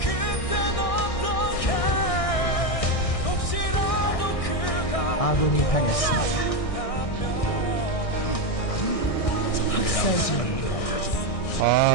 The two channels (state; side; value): late; right; 1.6 ms